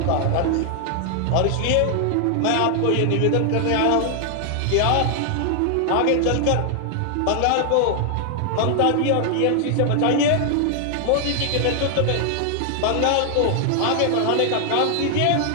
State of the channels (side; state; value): both; different; correlation 0.00